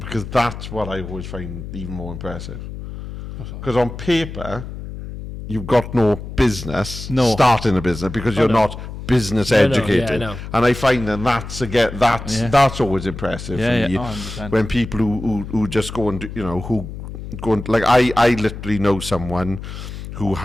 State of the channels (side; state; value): left; noise; hum, 10 dB below the sound